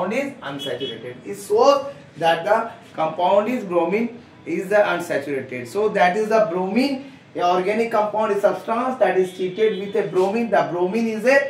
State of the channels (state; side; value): identical; both; correlation 1.00